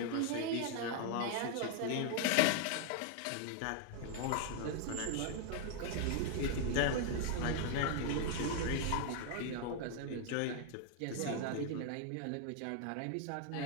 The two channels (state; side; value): different; both; correlation 0.00